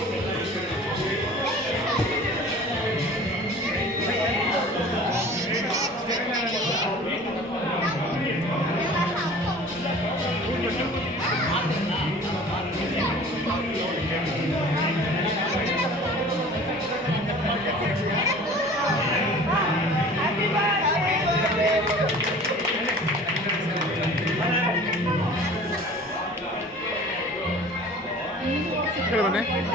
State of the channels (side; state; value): both; normal; correlation 0.44